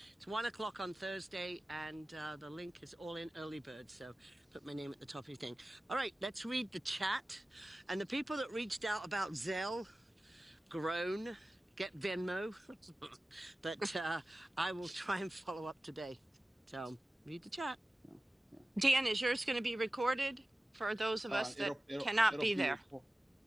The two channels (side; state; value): both; normal; correlation 0.96